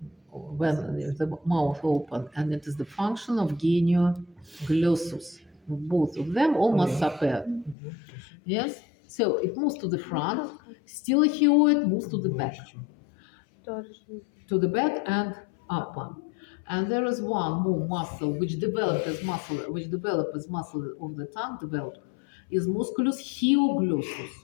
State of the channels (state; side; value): drops out; right; at 7.8 s